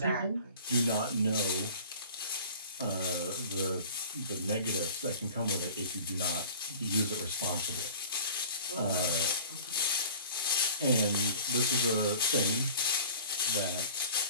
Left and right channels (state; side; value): inverted; both; correlation -0.43